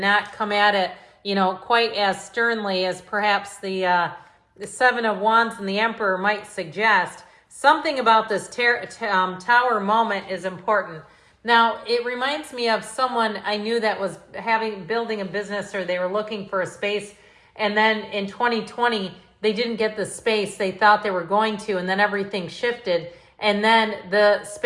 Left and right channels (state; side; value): identical; both; correlation 1.00